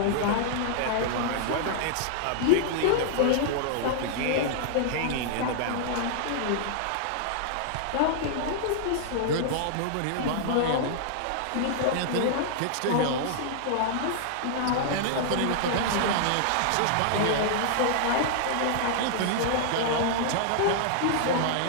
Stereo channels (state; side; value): different; both; correlation -0.01